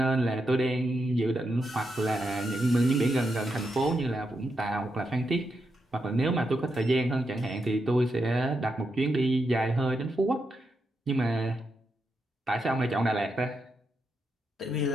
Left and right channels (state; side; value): normal; both; correlation 0.84